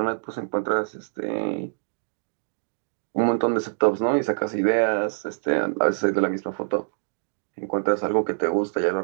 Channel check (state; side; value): silent; left; digital silence